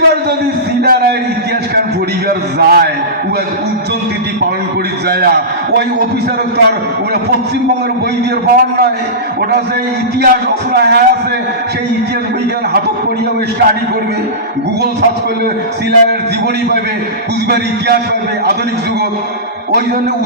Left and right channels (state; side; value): normal; both; correlation -0.19